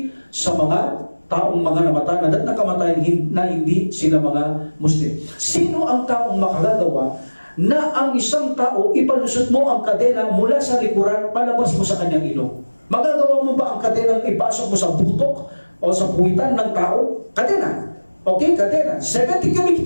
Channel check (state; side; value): inverted; both; correlation -1.00